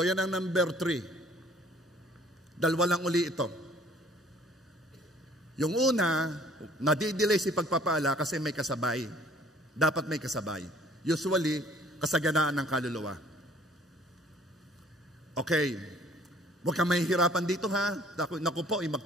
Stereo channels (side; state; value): both; normal; correlation 0.56